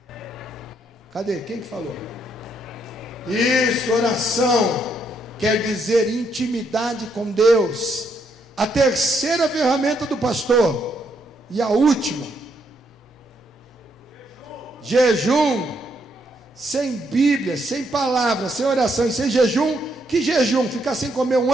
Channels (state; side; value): normal; both; correlation 0.75